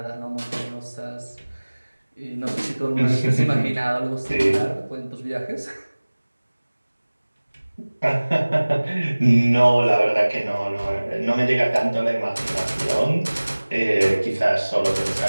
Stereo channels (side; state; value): both; inverted; correlation -1.00